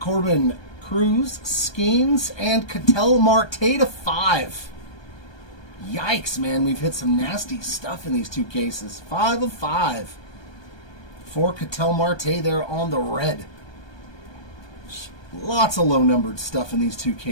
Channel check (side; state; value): right; late; 1.2 ms